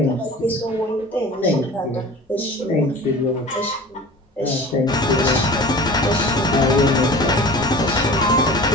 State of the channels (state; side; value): normal; both; correlation 0.39